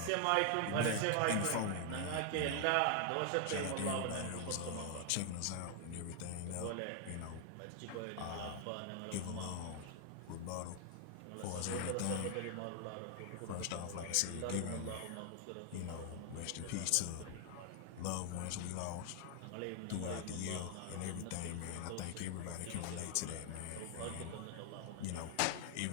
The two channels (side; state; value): both; different; correlation 0.00